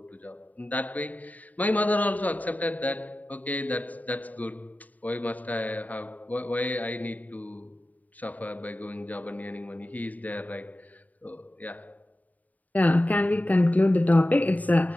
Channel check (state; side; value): late; right; 0.075 ms